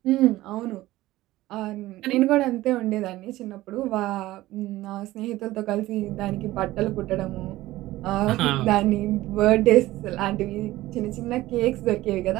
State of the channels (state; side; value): quieter; left; 16.8 dB